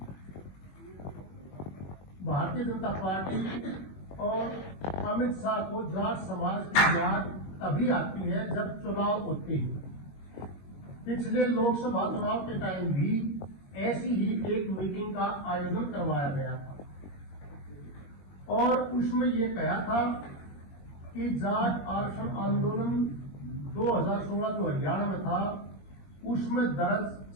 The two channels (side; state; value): right; late; 21 ms